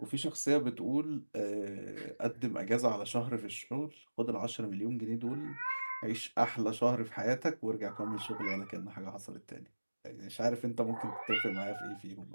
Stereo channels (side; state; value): both; inverted; correlation -1.00